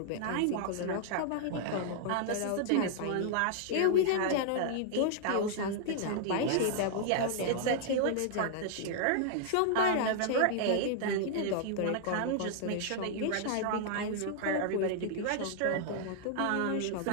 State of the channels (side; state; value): both; different; correlation -0.01